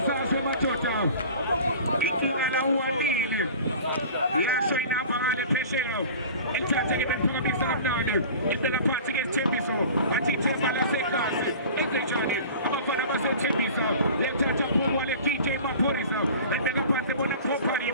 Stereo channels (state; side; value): inverted; both; correlation -0.41